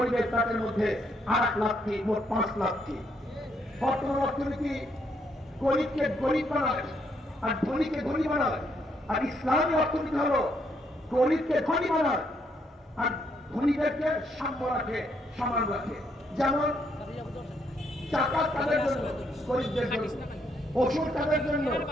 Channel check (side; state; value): both; normal; correlation 0.74